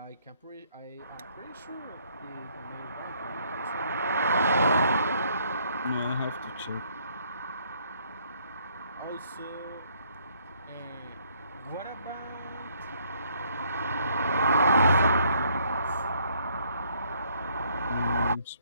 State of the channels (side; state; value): both; inverted; correlation -0.66